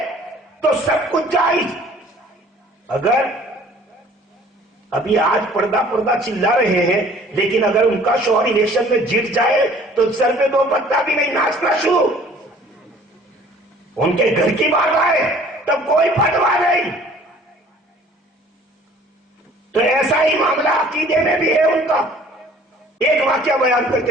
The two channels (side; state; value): both; normal; correlation 0.52